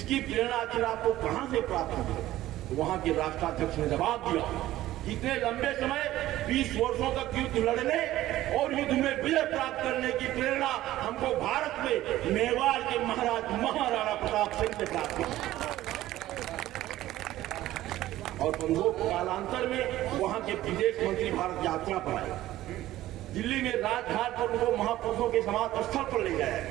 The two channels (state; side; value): quieter; left; 15.0 dB